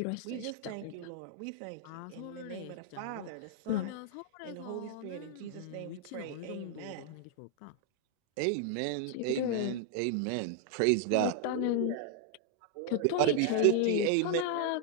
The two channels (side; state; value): both; different; correlation 0.00